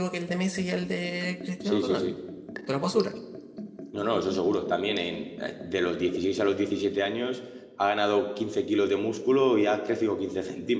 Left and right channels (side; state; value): both; identical; correlation 1.00